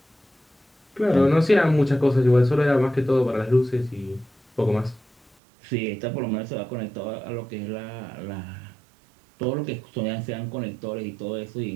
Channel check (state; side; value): drops out; left; at 5.3 s